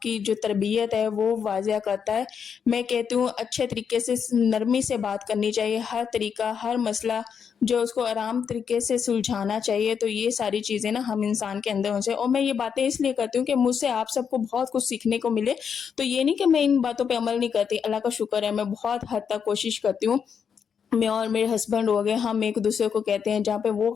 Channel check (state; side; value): quieter; right; 7.1 dB